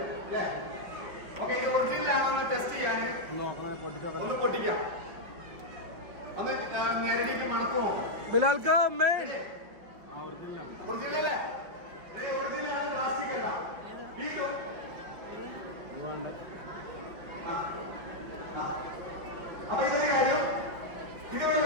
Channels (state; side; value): late; left; 5.3 ms